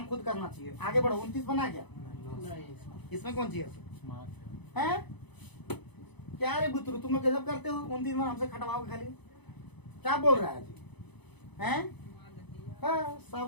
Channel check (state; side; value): late; right; 0.99 ms